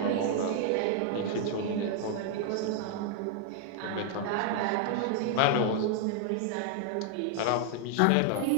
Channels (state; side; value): different; both; correlation 0.00